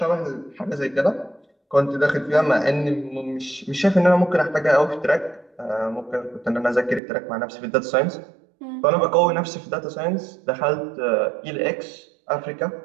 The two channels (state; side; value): drops out; left; at 7.0 s